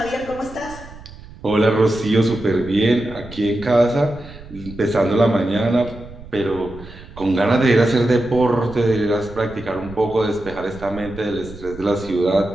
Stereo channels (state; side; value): noise; right; rumble, 17 dB below the sound